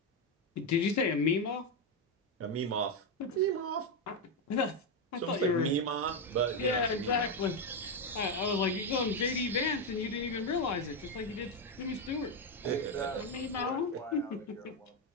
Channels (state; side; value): normal; both; correlation 0.06